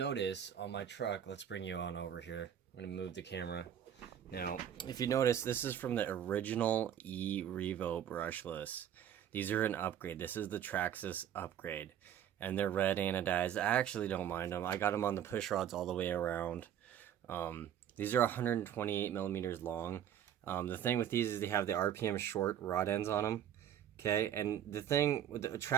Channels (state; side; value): quieter; left; 9.9 dB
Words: on my truck, let's bring you on over here. I'm gonna move the camera. Now, if you notice, this is from the original revo brushless. These are an upgrade. This is the traxxas upgrade. And they're red anodized. I actually don't mind them. I got them on the push rods all the way around. These are 128 millimeters long. The thing with these is they have the RPM short rod ends on them. Okay, and the thing with the